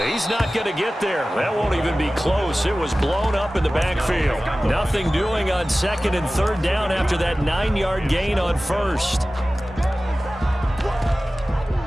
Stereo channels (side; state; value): both; normal; correlation 0.96